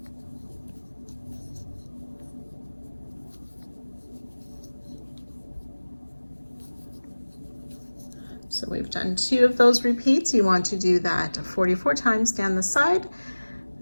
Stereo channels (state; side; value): inverted; both; correlation -1.00